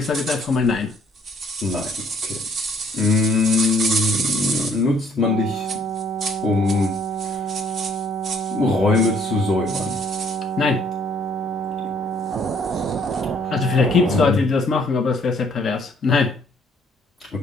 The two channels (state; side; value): normal; both; correlation 0.63